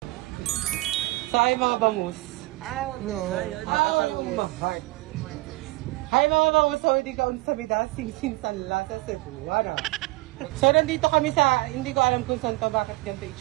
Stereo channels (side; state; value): left; quieter; 22.1 dB